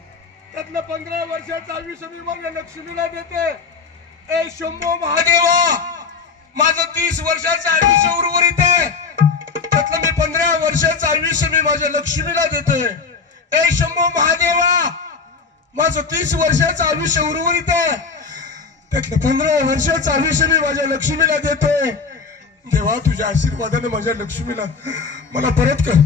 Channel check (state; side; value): quieter; right; 5.0 dB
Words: त्यातलं 15 वर्षाचं आयुष्य मी माझ्या लक्ष्मीला देते. ए शंभो महादेवा माझं 30 वर्षाचं आयुष्य उर्वरित आहे त्यातलं मी 15 वर्षाचं आयुष्य मी माझ्या लक्ष्मीला देतोय. ए शंभो महादेवा माझं 30 वर्षाचं आयुष्य उर्वरित आहे त्यातलं 15 वर्षाचं आयुष्य मी माझ्या लक्ष्मीला देतोय. देवा तुझ्या आशीर्वादाने माझ्या लक्ष्मीला मला परत कर.